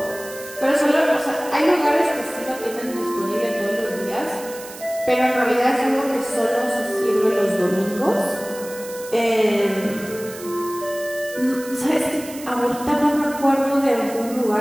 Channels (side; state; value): right; noise; hiss, 15 dB below the sound